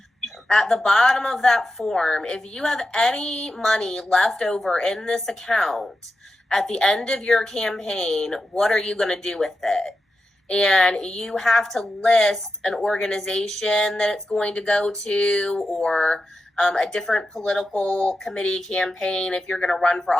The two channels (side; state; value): both; normal; correlation 0.90